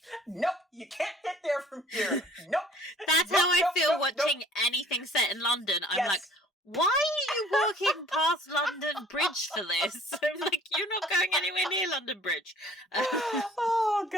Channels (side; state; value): both; normal; correlation 0.52